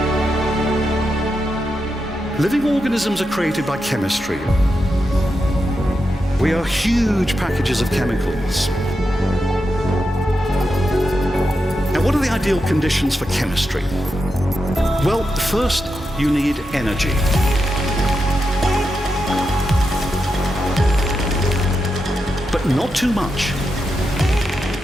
Living organisms are created by chemistry. We are huge packages of chemicals. Now, what are the ideal conditions for chemistry? Well, first, you need energy. But not too much.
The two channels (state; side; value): normal; both; correlation 0.87